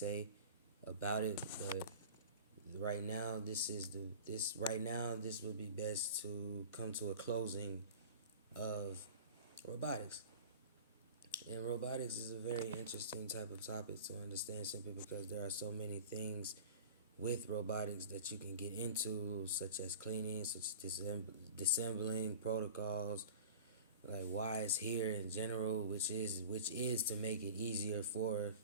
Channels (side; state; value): both; inverted; correlation -0.38